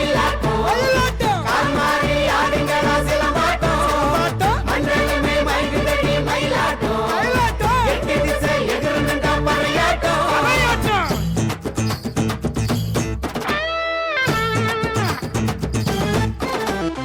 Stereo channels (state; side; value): identical; both; correlation 1.00